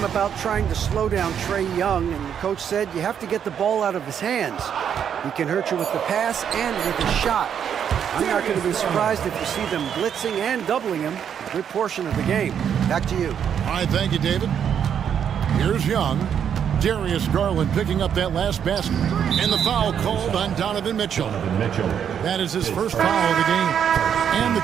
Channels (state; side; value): quieter; left; 8.4 dB